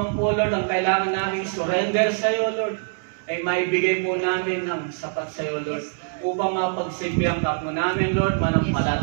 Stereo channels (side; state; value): left; silent; digital silence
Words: po, Lord, ang kailangan namin surrender sa iyo, Lord, ay maibigay po namin ng sapat sa iyo, Lord. Upang mapagsilbihan ka po namin, Lord,